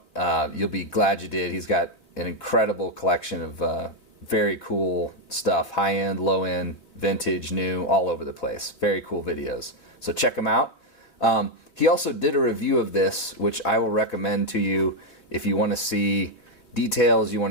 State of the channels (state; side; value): late; right; 3.5 ms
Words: You'll be glad you did. He's got an incredible collection of very cool stuff. High-end, low-end, vintage, new, all over the place. Very cool videos. So check him out. He also did a review of this, which I will recommend to you if you want to see details, you